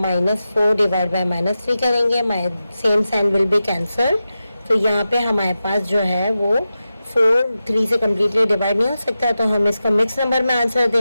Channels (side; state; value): both; inverted; correlation -0.92